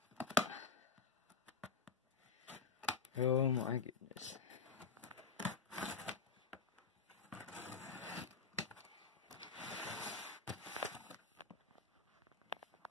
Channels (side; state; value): right; quieter; 5.0 dB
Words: Oh my goodness.